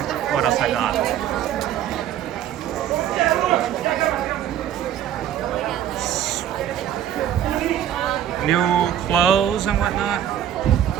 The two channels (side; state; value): left; quieter; 10.7 dB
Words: I got. New clothes and whatnot.